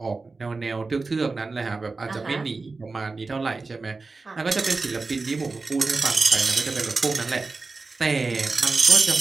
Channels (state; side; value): quieter; left; 3.9 dB